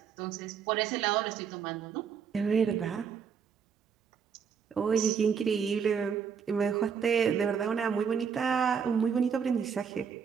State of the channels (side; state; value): left; quieter; 6.8 dB